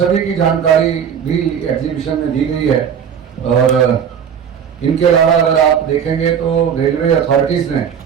की जानकारी भी एग्जीबिशन में दी गई है। और इनके अलावा अगर आप देखेंगे तो रेलवे अथॉरिटीज़ ने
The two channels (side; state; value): left; quieter; 7.9 dB